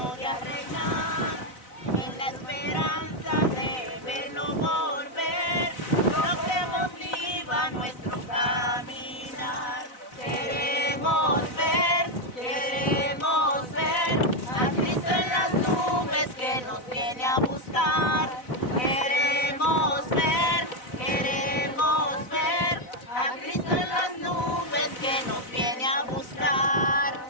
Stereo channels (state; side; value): late; right; 4.0 ms